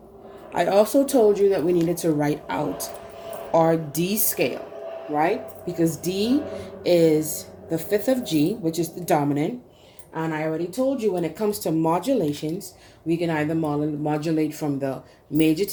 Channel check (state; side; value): identical; both; correlation 1.00